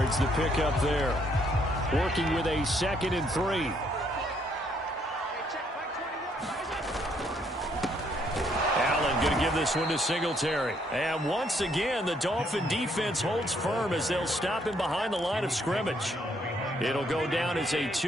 the pickup there. Working with a 2nd and 3. give this one to Singletary. And once again, the Dolphin defense holds firm as they'll stop him behind the line of scrimmage. It'll go down as a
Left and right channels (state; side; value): normal; both; correlation 0.70